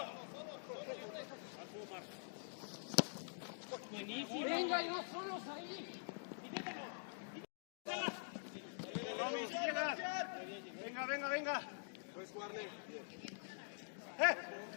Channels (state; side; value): silent; right; digital silence